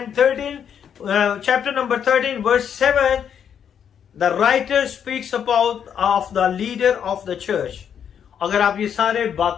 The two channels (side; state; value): right; quieter; 8.3 dB